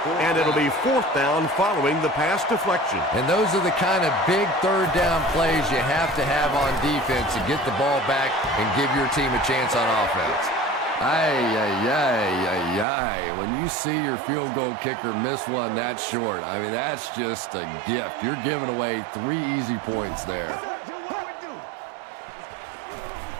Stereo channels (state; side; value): drops out; left; at 12.9 s